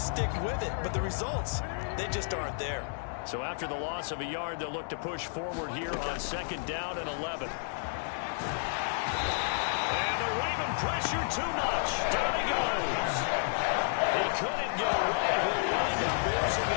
with it, but the results, they just aren't there. So after the loss of a yard, they'll look to push forward here on 2nd down and 11. And the Raven pressure too much. Down he goes. He couldn't get away. He'll wind up losing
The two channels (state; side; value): silent; right; digital silence